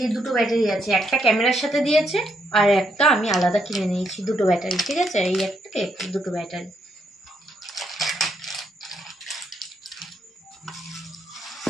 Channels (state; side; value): normal; both; correlation 0.76